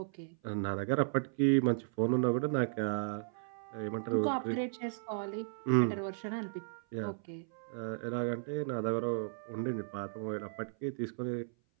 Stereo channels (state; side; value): silent; left; 54 dB below the other